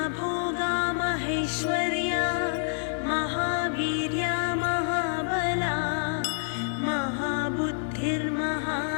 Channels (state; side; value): silent; right; digital silence